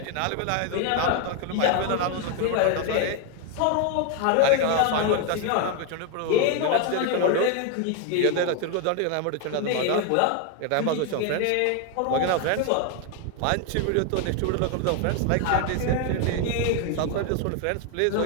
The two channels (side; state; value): both; different; correlation 0.01